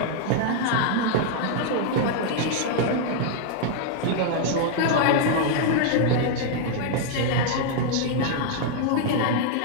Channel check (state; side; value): different; both; correlation 0.00